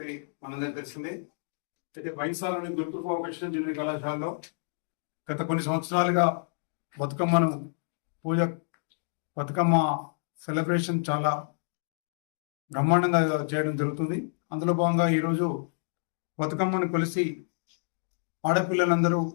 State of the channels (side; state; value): right; silent; digital silence